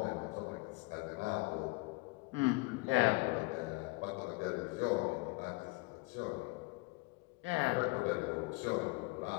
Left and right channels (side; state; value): right; quieter; 24.8 dB